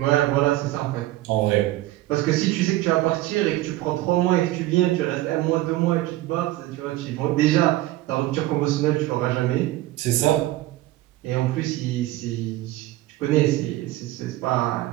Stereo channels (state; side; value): quieter; left; 16.5 dB